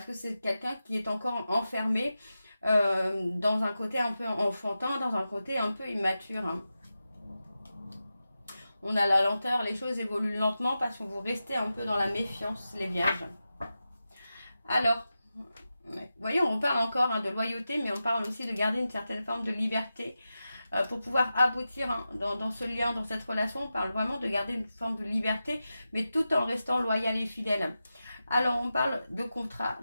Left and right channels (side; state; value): both; inverted; correlation -0.92